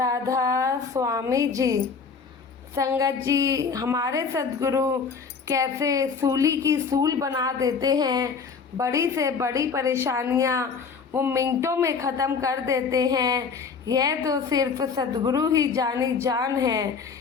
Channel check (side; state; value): right; quieter; 5.5 dB